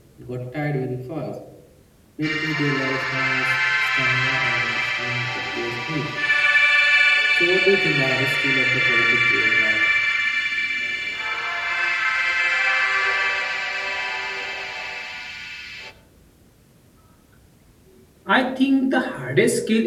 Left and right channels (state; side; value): identical; both; correlation 1.00